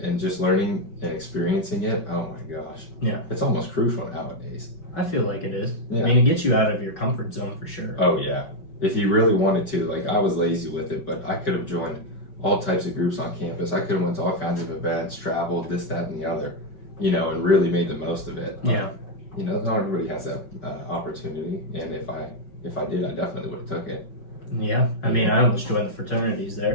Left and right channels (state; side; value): late; right; 5.3 ms